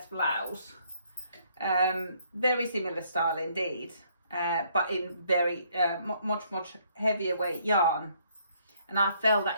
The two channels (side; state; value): both; inverted; correlation -0.67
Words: blouse, very similar style indeed, but in very much heavier weight yarn, and I felt